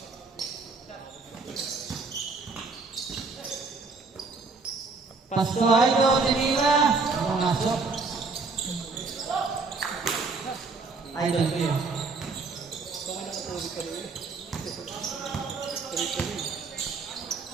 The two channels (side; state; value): left; quieter; 4.1 dB